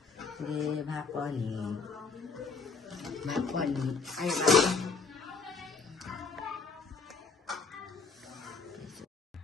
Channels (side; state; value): right; quieter; 4.7 dB